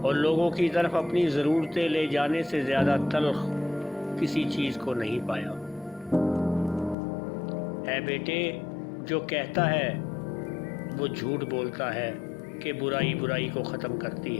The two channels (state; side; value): drops out; right; at 7.0 s